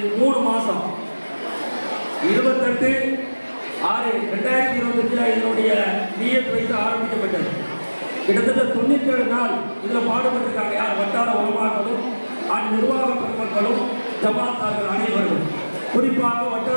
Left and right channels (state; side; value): inverted; both; correlation -1.00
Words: 3 மாதம். 28/6/2025 இதனுடைய நியத் வைத்து ஆரம்பிக்கப்பட்டது. கிட்டத்தட்ட 97 நாள் இதில் பாடுபட்டிருக்காங்க. யார்? வட்டார உலமாக்களும் நிர்வாக பெருமக்களும் ஜமாத்தார்கள் அனைவரும், குறிப்பாக